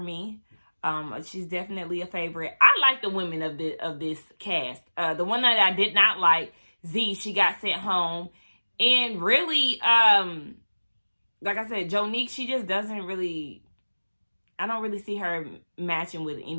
She's definitely a favorite. I like the women of this cast. The one that I did not like, Z, she got sent home. And really, like I said, Jonique, she just doesn't really, I don't really see her matching with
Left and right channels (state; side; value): inverted; both; correlation -1.00